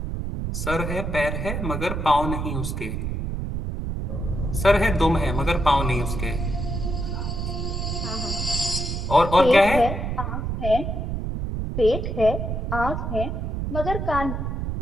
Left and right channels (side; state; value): right; noise; rumble, 2 dB below the sound